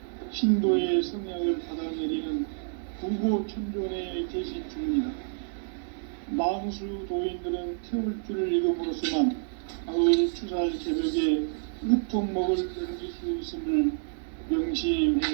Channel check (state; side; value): silent; left; digital silence